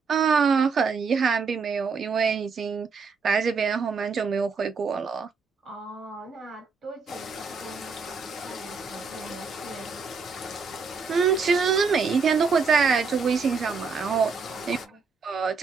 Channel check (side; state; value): left; quieter; 5.0 dB